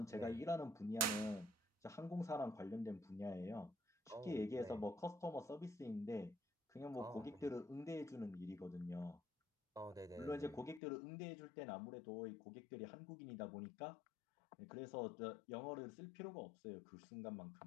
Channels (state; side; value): drops out; right; at 10.8 s